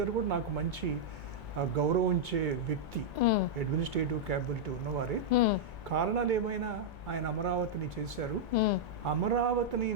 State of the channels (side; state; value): both; normal; correlation -0.05